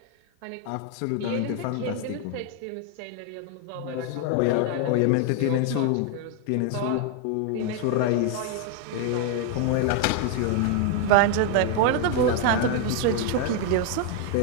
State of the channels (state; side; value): different; both; correlation 0.01